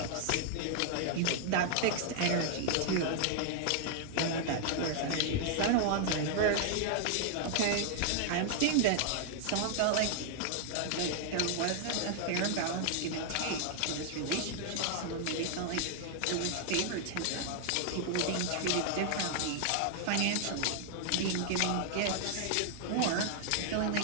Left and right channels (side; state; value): both; different; correlation 0.00